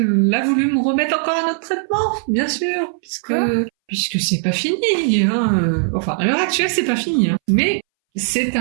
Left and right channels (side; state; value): left; silent; 64 dB below the other